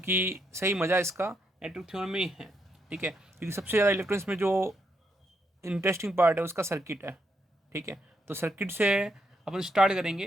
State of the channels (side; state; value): both; normal; correlation 0.78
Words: सही मज़ा इसका नेटवर्क थ्योरम में ही है। ठीक है, क्योंकि सबसे ज़्यादा इलेक्ट्रॉनिक्स में जो इंटरेस्टिंग पार्ट है उसका सर्किट है। ठीक है, तो सर्किट से अपन स्टार्ट